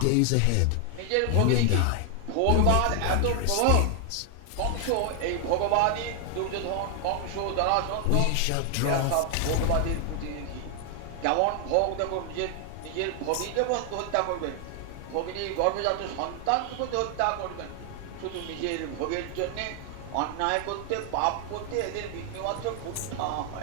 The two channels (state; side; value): different; both; correlation 0.00